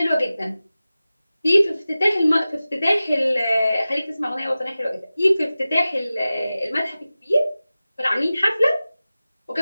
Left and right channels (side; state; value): both; inverted; correlation -0.96